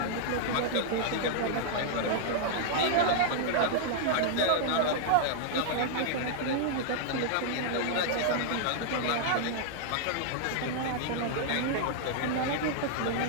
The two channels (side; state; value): both; different; correlation -0.01